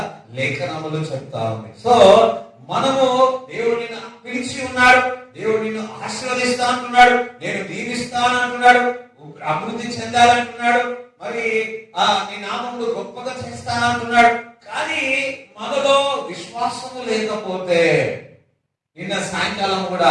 లేఖనములు చెప్తా ఉంది. సో మనము దేవుడిని పిలిచి ఉన్నాడు, దేవుడు నిన్ను ఆశీర్వదిస్తా అంటున్నాడు, నేను దీవిస్తాను అంటున్నాడు, అభివృద్ధి చెందాలంటున్నాడు, మరి నీ నామములు గొప్పగా చేస్తానంటున్నాడు. కానీ మనలో విశ్వాసము లేకపోతే, నిన్న సాయంకాలం కూడా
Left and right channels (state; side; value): identical; both; correlation 1.00